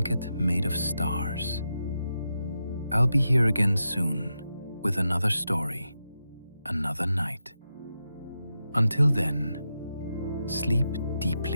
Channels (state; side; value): inverted; both; correlation -0.88